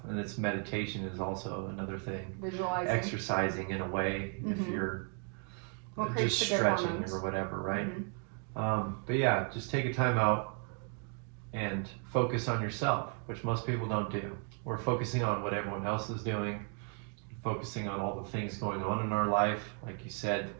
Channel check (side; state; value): left; quieter; 39.7 dB